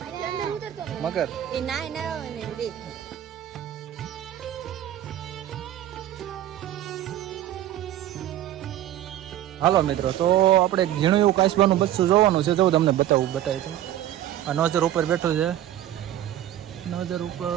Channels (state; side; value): quieter; left; 12.3 dB